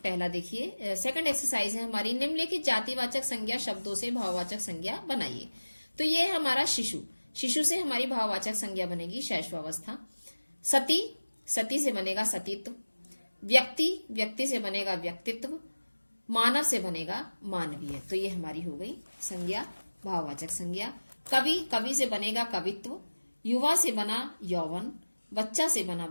पहला, देखिए सेकंड एक्सरसाइज है हमारी। निम्नलिखित जातिवाचक संज्ञा शब्दों से भाववाचक संज्ञा बनाइए। तो ये है हमारा शिशु से हमारी भाववाचक संज्ञा बनेगी शैशवावस्था। सती से बनेगा सतीत्व। व्यक्ति से बनेगा व्यक्तित्व। मानव से बनेगा मानवीय। तो ये हमारी हो गई संज्ञा, भाववाचक संज्ञा। कवि से बनेगा कवित्व। युवा से बना यौवन। बच्चा से बना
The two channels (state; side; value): inverted; both; correlation -1.00